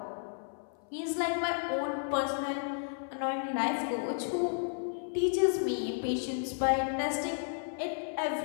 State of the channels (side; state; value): right; silent; 56 dB below the other